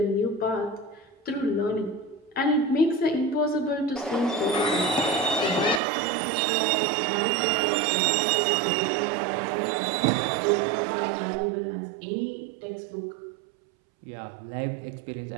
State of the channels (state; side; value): drops out; left; at 5.8 s